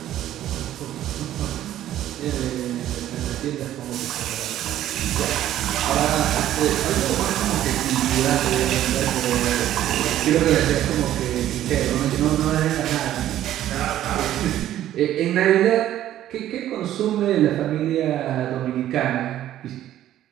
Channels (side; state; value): left; quieter; 12.5 dB